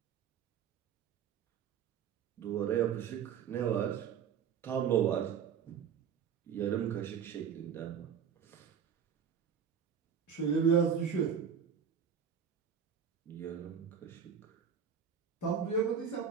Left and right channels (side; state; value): left; quieter; 7.6 dB